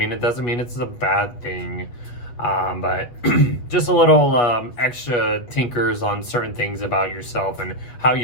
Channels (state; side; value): late; right; 8.3 ms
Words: it doesn't mean it's a bad thing. But just a little extra tinkers on certain things about yourself and how